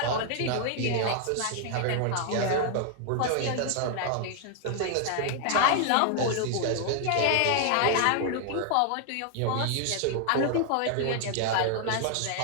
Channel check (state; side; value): different; both; correlation 0.00